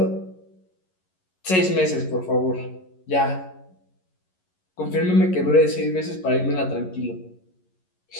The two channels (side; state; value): right; late; 11 ms